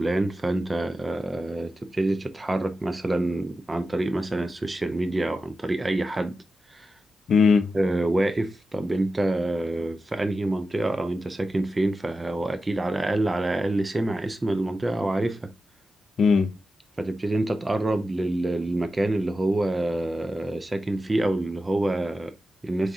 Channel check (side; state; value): both; normal; correlation 0.91